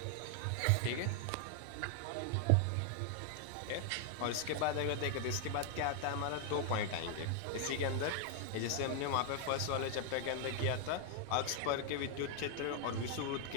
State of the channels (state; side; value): different; both; correlation 0.00